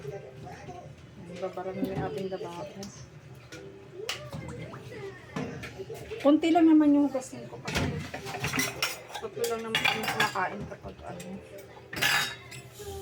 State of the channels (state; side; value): identical; both; correlation 1.00